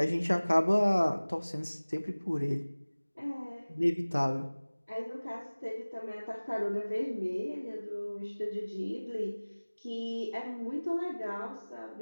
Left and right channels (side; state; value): both; inverted; correlation -1.00